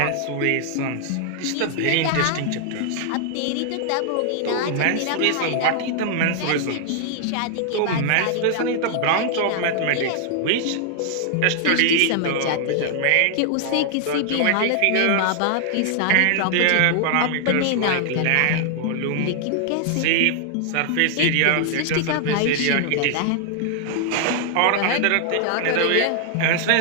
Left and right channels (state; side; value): different; both; correlation 0.00